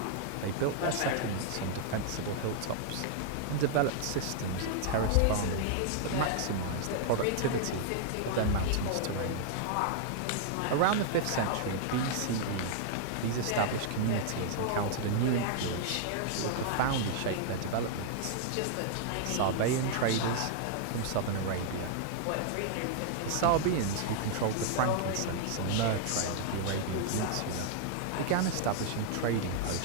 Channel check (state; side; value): different; both; correlation -0.01